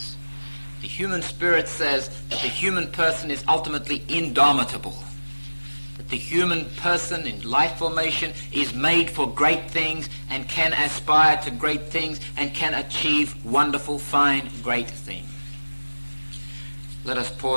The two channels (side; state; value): both; inverted; correlation -1.00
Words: The human spirit says that the human person is ultimately indomitable. That the human person in life formation is made for great things and can aspire to great things and can achieve wonderful, fine, great things. Let us